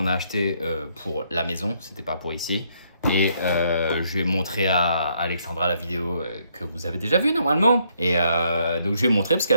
a achetés pour la maison, c'était pas pour ici. Et je vais montrer à Alexandra la vidéo que vous avez déjà vue normalement. Et donc je vais montrer parce qu'elle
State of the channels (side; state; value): both; inverted; correlation -0.72